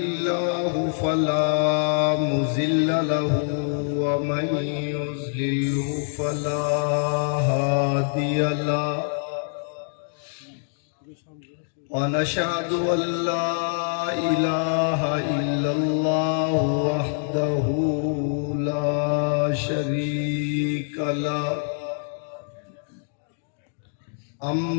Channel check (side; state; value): right; silent; digital silence